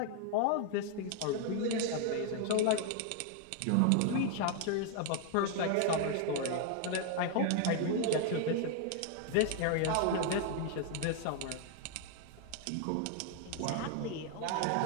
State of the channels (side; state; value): both; different; correlation 0.00